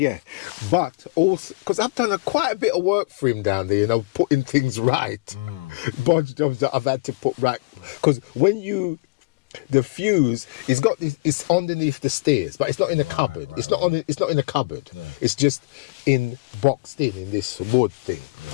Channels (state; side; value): quieter; right; 26.2 dB